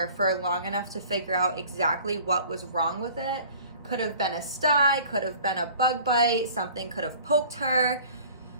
for long enough to figure out exactly what was wrong with it. Could have been a sty, could have been a bug bite, something could have poked her.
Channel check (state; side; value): inverted; both; correlation -0.48